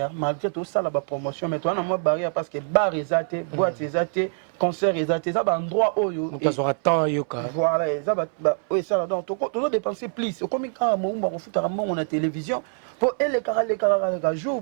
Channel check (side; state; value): left; silent; 61 dB below the other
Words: malgré tout ça la promotion mais toi na moi barrière parce que bar ezate boîte ezate concert ezate ça ba endroit oyo et ça temps yoka voilà ça ba oui ça donc tout dépenser plus comme quand mo ba foot à mon na télévision pour les caractères jour